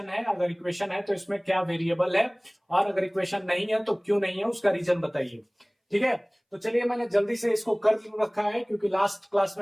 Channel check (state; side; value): identical; both; correlation 1.00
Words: है, अगर इक्वेशन है तो इसमें क्या वेरिएबल है, और अगर इक्वेशन नहीं है तो क्यों नहीं है, उसका रीजन बताइए। ठीक है, तो चलिए मैंने जल्दी से इसको कर रखा है क्योंकि लास्ट क्लास